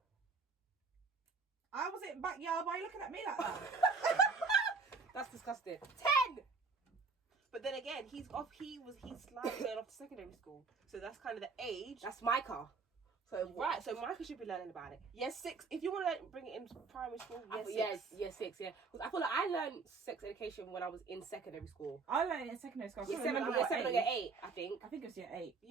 I was in backyard. Why are you looking at me like that? That's disgusting. 10. But then again, he's slightly going off to secondary school, so that's kind of the age. That's Micah. So right, so Micah should be learning about it. Yes, 6. If you want to bring it in primary school, yes, 6. Yeah, because I feel like I learned sex education when I was in secondary school. I learned it in secondary school. Year 7 or year 8, I think. I think it was year 8.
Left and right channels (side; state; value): left; quieter; 4.5 dB